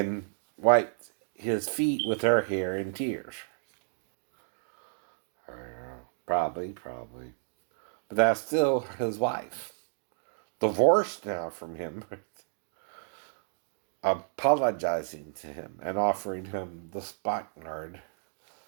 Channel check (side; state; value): left; silent; digital silence